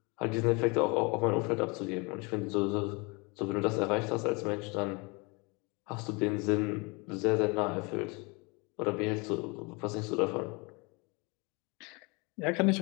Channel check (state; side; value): quieter; right; 28.6 dB